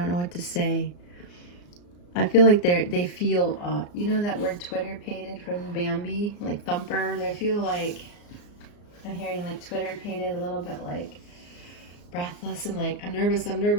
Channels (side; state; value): right; late; 34 ms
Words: know what to say. I feel like they feel, you know that word Twitter-pated from Bambi, like thumper? They feel like, I'm hearing like Twitter-pated, a little bit like breathless and like, I'm nervous,